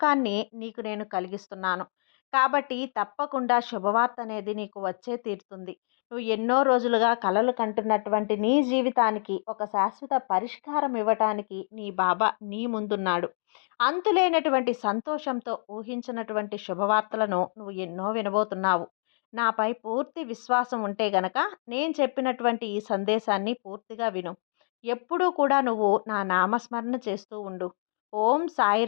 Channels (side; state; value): right; silent; digital silence